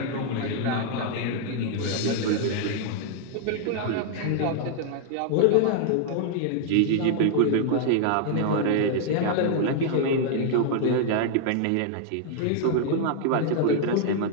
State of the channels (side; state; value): both; different; correlation 0.00